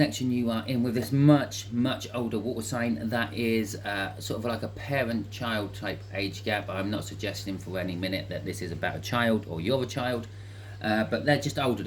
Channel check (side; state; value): both; identical; correlation 1.00